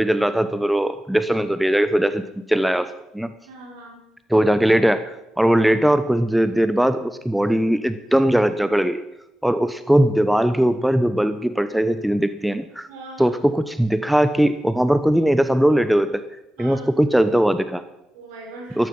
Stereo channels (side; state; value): both; normal; correlation 0.96